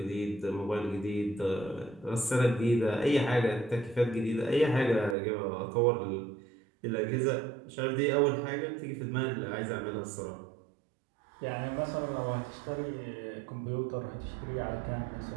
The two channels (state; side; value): drops out; left; at 5.2 s